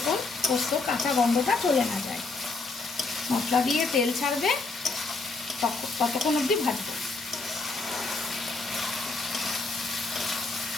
পোস্ত কাঁচা গন্ধটা চলে না যায়। মশলা দিয়ে তেল ছাড়বে, ততক্ষণ অবধি ভাজবো।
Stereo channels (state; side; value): quieter; right; 3.7 dB